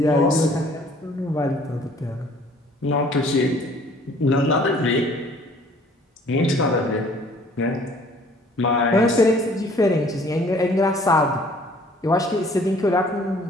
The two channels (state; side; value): normal; both; correlation 0.56